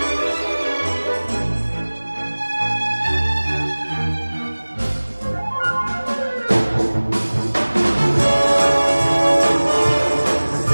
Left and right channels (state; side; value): inverted; both; correlation -1.00